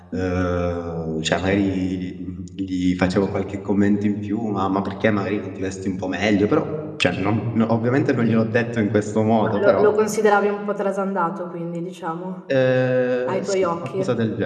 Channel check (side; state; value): both; identical; correlation 1.00